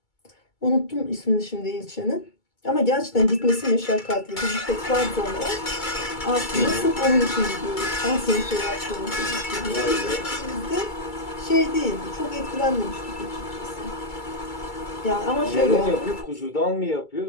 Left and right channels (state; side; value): late; right; 2.3 ms